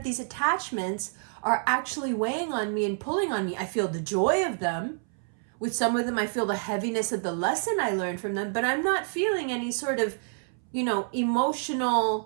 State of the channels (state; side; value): silent; left; 59 dB below the other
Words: these attachments are actually weighing on me and pulling on me. I feel the joy of them. With some of them, I feel the heaviness of the lesson I learned from them, but I'm not feeling any sort of,